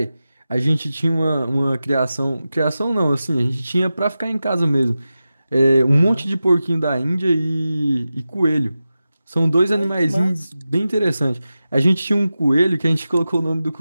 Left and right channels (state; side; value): inverted; both; correlation -0.94